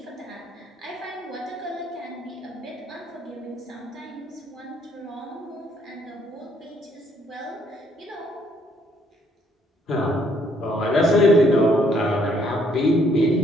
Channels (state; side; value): normal; both; correlation 0.67